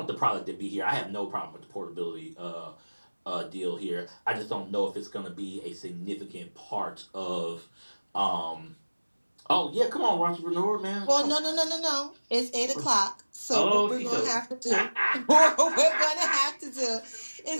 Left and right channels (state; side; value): inverted; both; correlation -1.00